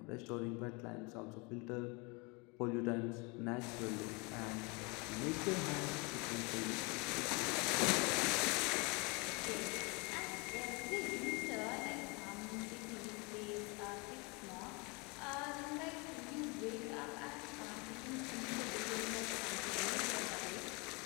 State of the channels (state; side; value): quieter; right; 29.3 dB